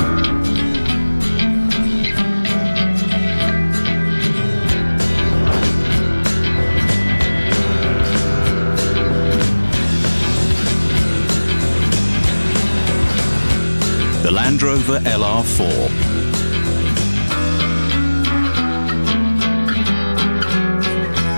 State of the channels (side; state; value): both; inverted; correlation -1.00